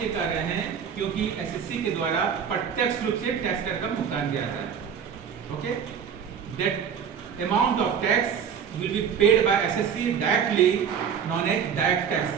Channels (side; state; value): left; quieter; 7.5 dB